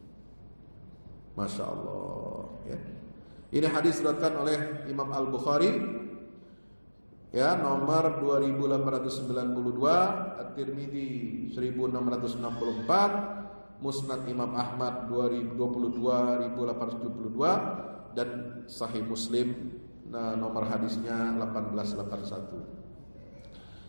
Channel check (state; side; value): inverted; both; correlation -1.00